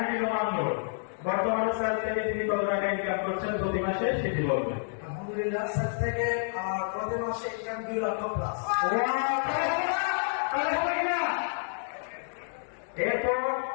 রোমান মোড়, বর্তমানে সেল থেকে তিনি কত টাকা ইনকাম করছেন প্রতি মাসে সেটি বলবেন। আলহামদুলিল্লাহ, সেল থেকে আমার প্রতি মাসে ইনকাম 2 লক্ষ প্লাস। এরপর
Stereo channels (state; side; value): silent; right; digital silence